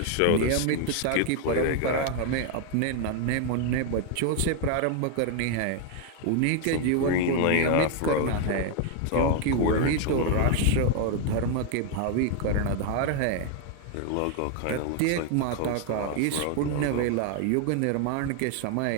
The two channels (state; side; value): different; both; correlation 0.00